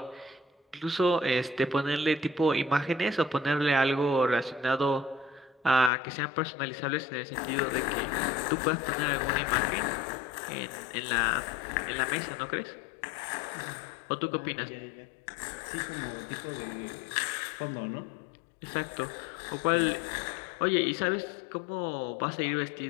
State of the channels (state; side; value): drops out; right; at 5.9 s